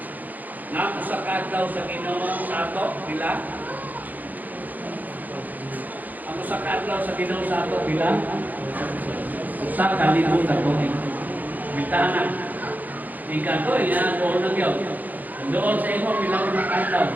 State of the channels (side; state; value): left; late; 0.082 ms